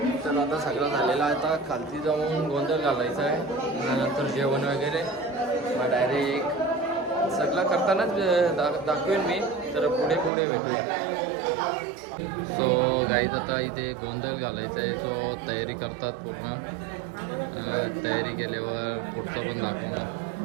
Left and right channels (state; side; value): drops out; left; at 10.3 s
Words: तर आता सगळं झालेलं आहे. आता खालती जाऊन गोंधळ घालायचा आहे. नंतर जेवण वगैरे मग डायरेक्ट सगळं करतानाच दाखवेन मी. तर पुढे पुढे भेटूया. सो गाईज आता इथे गोंधळ घालायचा आहे. सो तयारी करतात पूर्ण. तयारी केल्यावर पुढचं पण दाखवून.